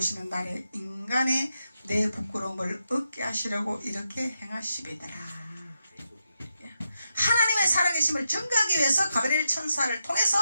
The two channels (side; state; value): both; inverted; correlation -0.86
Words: 날에 인간의 내 부끄러움을 얻게 하시려고 이렇게 행하시리더라. 하나님의 살아계심을 증거하기 위해서 가브리엘 천사를 통해서